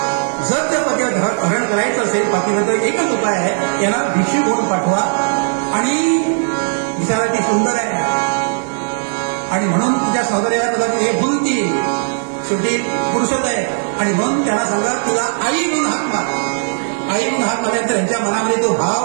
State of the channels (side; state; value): left; silent; digital silence